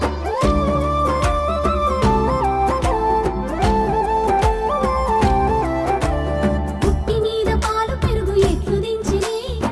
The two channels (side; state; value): both; identical; correlation 1.00